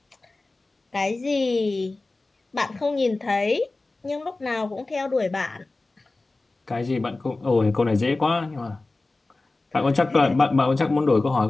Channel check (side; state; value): right; quieter; 3.2 dB